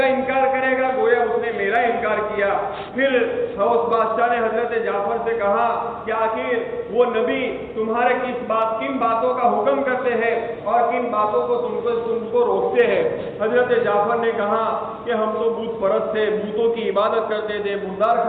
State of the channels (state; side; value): identical; both; correlation 1.00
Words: انکار کرے گا گویا اس نے میرا انکار کیا. پھر اس بادشاہ نے حضرت جعفر سے کہا کہ آخر وہ نبی تمہارے کن باتوں کا حکم کرتے ہیں اور کن باتوں کو تم کو روکتے ہیں؟ حضرت جعفر نے کہا کہ ہم تو بت پرست تھے، بتوں کی عبادت کرتے تھے، مردار